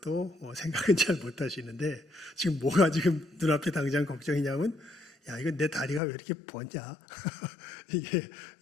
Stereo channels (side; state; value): right; drops out; at 6.0 s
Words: 생각은 잘 못 하시는데 지금 뭐가 지금 눈앞에 당장 걱정이냐면 야 이거 내 다리가 왜 이렇게 부었냐? 이게